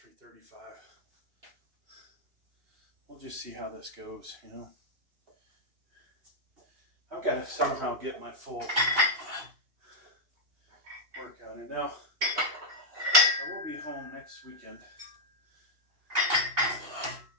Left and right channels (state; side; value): late; left; 2.8 ms